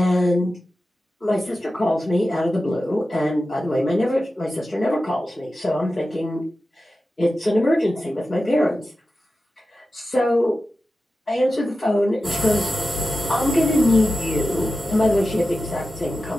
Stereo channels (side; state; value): both; normal; correlation 0.93